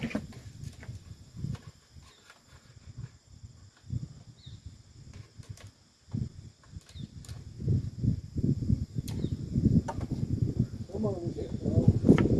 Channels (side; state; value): both; identical; correlation 1.00